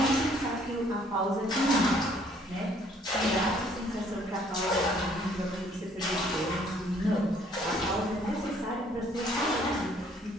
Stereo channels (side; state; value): both; normal; correlation 0.62